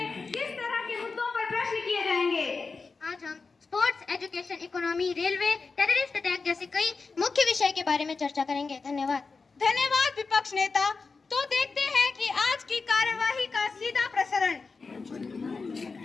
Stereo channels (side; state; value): right; quieter; 4.4 dB